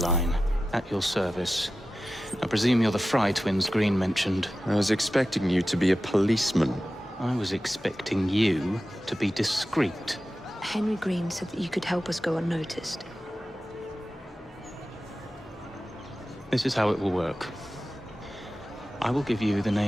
at your service. I presume you're the Fry twins Green mentioned. I was expecting you to be a policeman. I was expecting you to be discreet. Henry Green said that you could help us go unnoticed. This is how it will work. I will give you the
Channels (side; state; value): both; normal; correlation 0.94